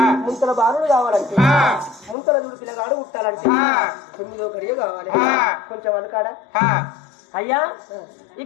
ముంతల బాలుడు కావాలంటే ముంతల చూడు పిల్లగాడు ఉట్టాలంటే 9వ గడియ కావాలి కొంచెం అనుకాడా అయ్యా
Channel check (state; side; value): drops out; right; at 2.1 s